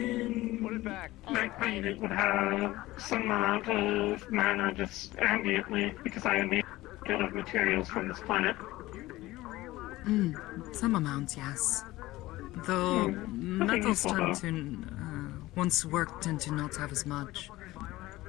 it back. My planet would have some amount of mana just ambiently because I am made of materials from this planet. Some amount, yes. Though metals tend to, once worked, tend to not have as much.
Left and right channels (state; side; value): quieter; right; 17.9 dB